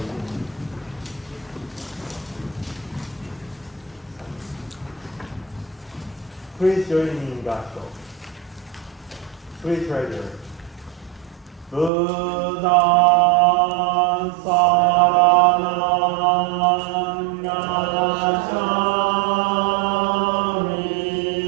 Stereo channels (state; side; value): drops out; left; at 11.9 s